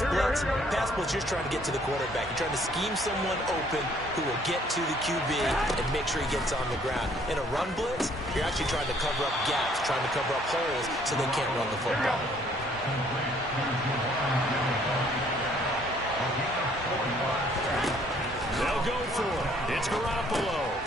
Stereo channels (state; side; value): normal; both; correlation 0.62